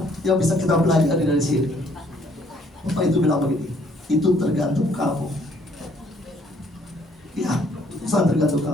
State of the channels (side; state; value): both; normal; correlation 0.64